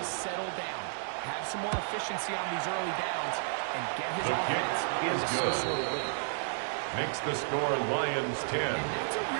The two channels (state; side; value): silent; left; digital silence